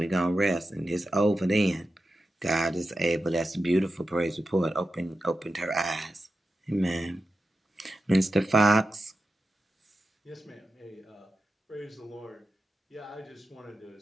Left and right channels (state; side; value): normal; both; correlation 0.90